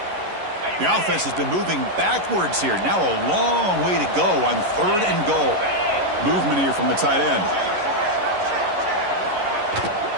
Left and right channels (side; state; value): left; late; 11 ms